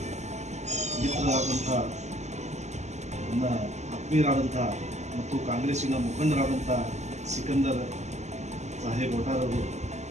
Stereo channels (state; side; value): late; left; 0.33 ms